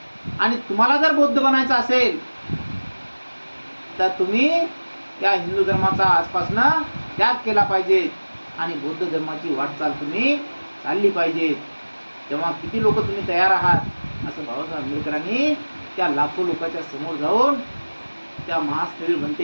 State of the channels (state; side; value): inverted; both; correlation -1.00